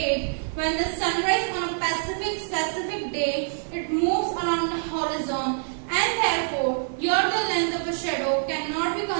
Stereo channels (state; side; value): silent; left; 61 dB below the other